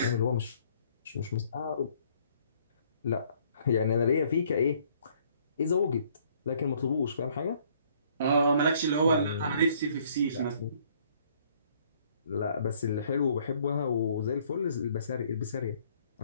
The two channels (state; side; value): inverted; both; correlation -0.63